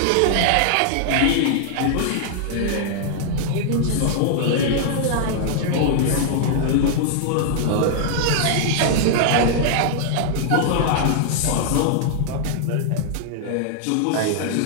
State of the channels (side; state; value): both; different; correlation -0.01